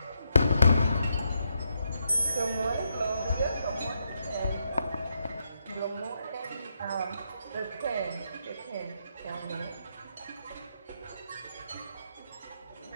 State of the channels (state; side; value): inverted; both; correlation -0.79